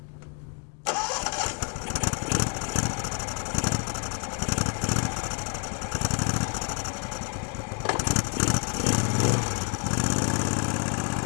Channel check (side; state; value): right; quieter; 39.3 dB